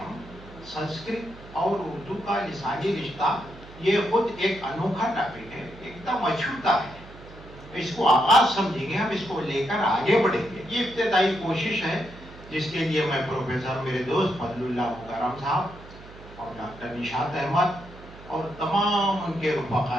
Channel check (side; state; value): right; noise; hum, 18 dB below the sound